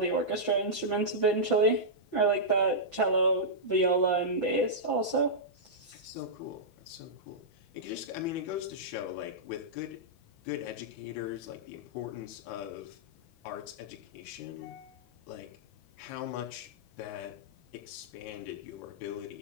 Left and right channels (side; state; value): right; late; 6.0 ms